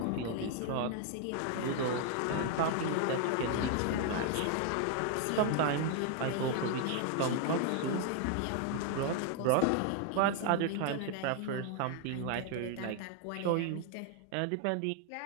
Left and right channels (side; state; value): both; different; correlation 0.00